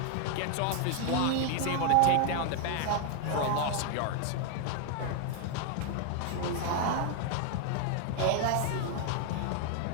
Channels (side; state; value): both; different; correlation 0.00